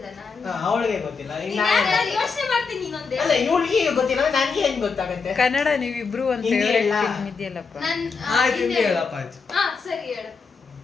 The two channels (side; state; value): right; quieter; 5.0 dB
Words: ನಾನು ಅವಳಿಗೆ ಗೊತ್ತಿಲ್ಲ. ಯೋಚನೆ ಮಾಡ್ತೀನಿ ಇನ್ನೊಂದೇ. ಅಲ್ಲ ಇವಳಿಗೆ ಗೊತ್ತಿಲ್ಲ, ನನಗೆ ಹೆಂಗ್ ಗೊತ್ತಾಗತ್ತೆ? ಕನ್ನಡ ನೀವಿಬ್ರು ಒಂದ್ ಹಿಂದಿ ಫೇವರೇಟ್ ಎಲ್ಲ? ಫಿಲ್ಮ್ ಇದೆಯಲ್ಲಪ್ಪ. ಹಿಂದಿ ಹೇಳಪ್ಪ ಆಯ್ತು. ಸರಿ ಹೇಳು.